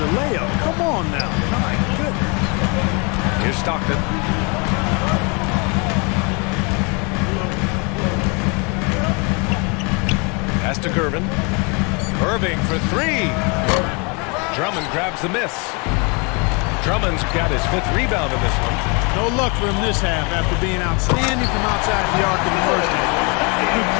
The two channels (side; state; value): right; quieter; 31.9 dB